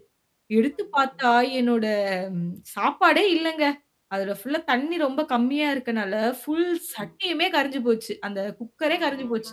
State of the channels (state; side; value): identical; both; correlation 1.00